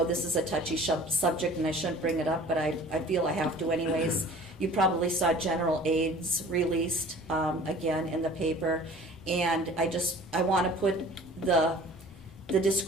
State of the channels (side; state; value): both; normal; correlation 0.46